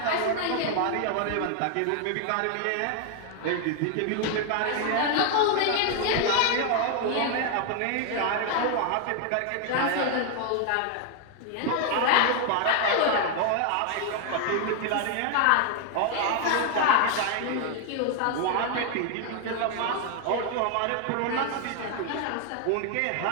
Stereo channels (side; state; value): both; different; correlation 0.00